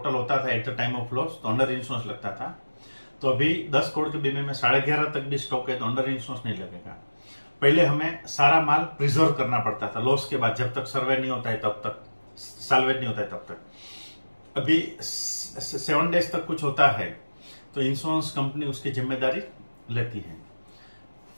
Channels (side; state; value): both; inverted; correlation -1.00